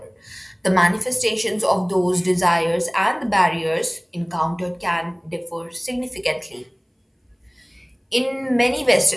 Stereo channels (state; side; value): identical; both; correlation 1.00